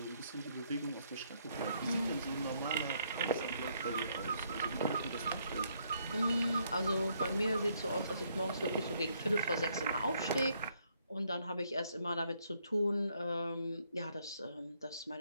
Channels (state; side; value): inverted; both; correlation -0.71